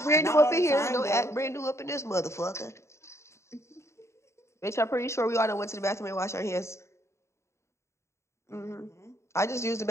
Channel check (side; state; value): right; late; 0.14 ms